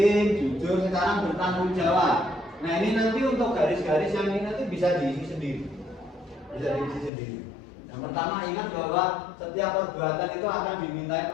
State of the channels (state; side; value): drops out; right; at 7.1 s